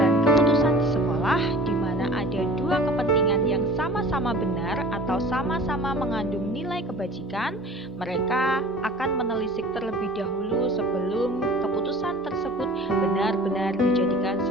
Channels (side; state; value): both; normal; correlation 0.44